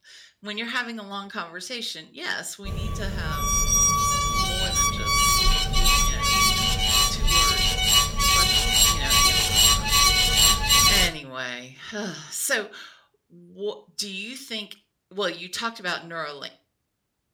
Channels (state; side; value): identical; both; correlation 1.00